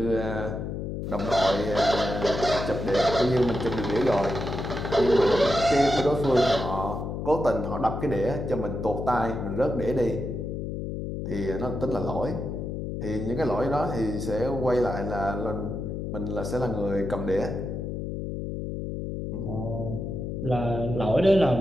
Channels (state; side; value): noise; left; hum, 4 dB below the sound